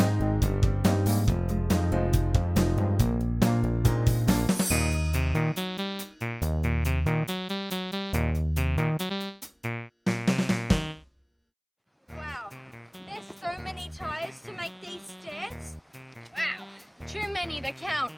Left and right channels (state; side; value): identical; both; correlation 1.00